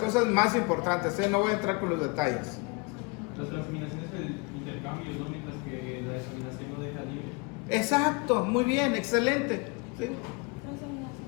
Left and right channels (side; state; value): right; quieter; 29.2 dB